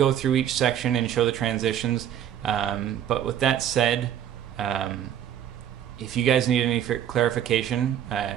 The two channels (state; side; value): quieter; left; 10.2 dB